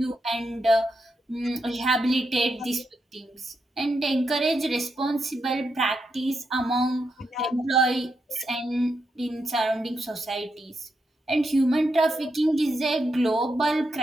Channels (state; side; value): normal; both; correlation 0.84